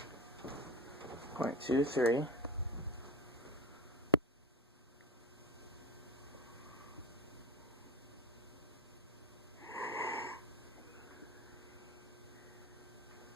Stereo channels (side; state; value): both; normal; correlation 0.25